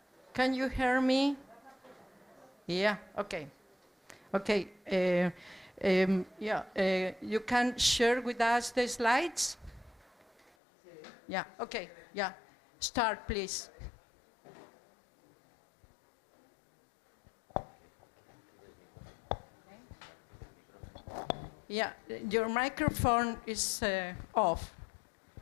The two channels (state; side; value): drops out; right; at 10.5 s